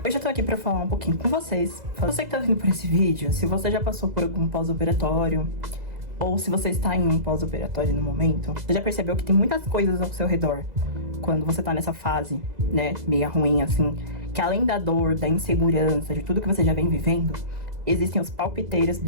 Hoje eu tô aqui pra falar um pouquinho com vocês. Você que tá vindo por esse vídeo, se você já passou por algum pós-operatório, ou se você está em um pós-operatório no momento, você já percebeu que tem muitas coisas ao seu redor quando você tá nessa fase, né, meio ruim assim, que além da dor, da insegurança, de tudo que você já vem vivendo, existem os palpiteiros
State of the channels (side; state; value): left; late; 2.0 ms